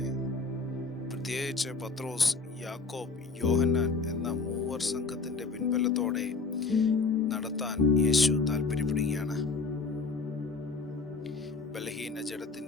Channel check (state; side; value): quieter; right; 4.1 dB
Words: പ്രത്യേകിച്ച് പത്രോസ്, യാക്കോബ്, യോഹന്നാൻ എന്ന മൂവർ സംഘത്തിന്റെ പിൻബലത്തോടെ നടത്താൻ യേശു താല്പര്യപ്പെടുകയാണ്. ബലഹീന